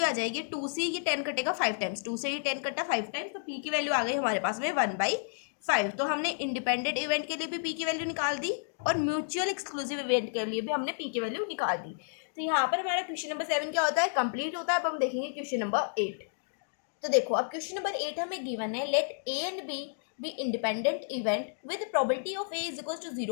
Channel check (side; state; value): right; silent; digital silence